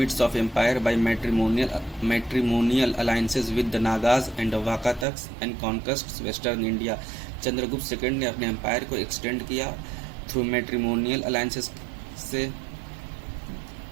of empire by matrimonial alliances with the Nagas and Vakatakas and conquests western India. Chandragupta second ने अपने एम्पायर को एक्सटेंड किया थ्रू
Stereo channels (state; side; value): drops out; left; at 5.1 s